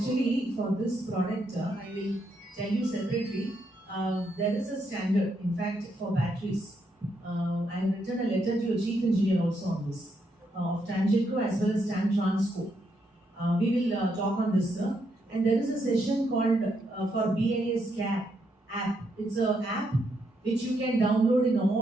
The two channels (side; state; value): both; normal; correlation 0.78